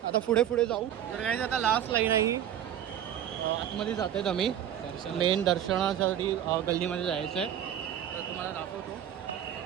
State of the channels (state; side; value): quieter; left; 10.5 dB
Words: आता पुढे जाऊ. तर काय आता लास्ट लाईन आहे ही. आतमध्ये जात आहेत आम्ही. मेन दर्शनासाठी गल्लीमध्ये जायचं आहे. तर तुम्हाला दाखवतो.